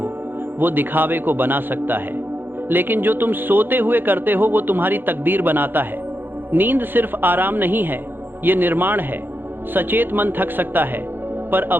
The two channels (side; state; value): left; late; 0.099 ms